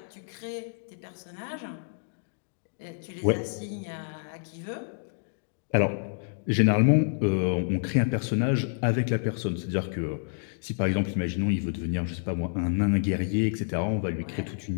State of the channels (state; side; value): silent; right; digital silence